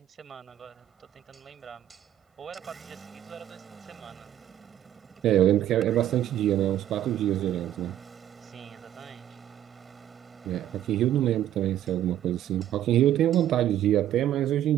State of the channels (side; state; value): left; quieter; 11.8 dB